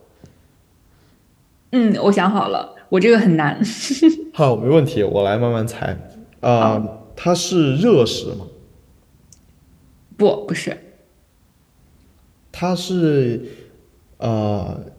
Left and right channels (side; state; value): both; identical; correlation 1.00